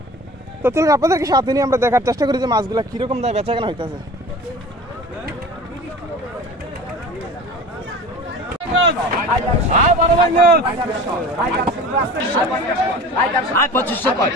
তো চলুন আপনাদেরকে সাথে নিয়ে আমরা দেখার চেষ্টা করি যে মাছগুলো কীরকম দামে বেচাকেনা হইতেছে।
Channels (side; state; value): both; normal; correlation 0.39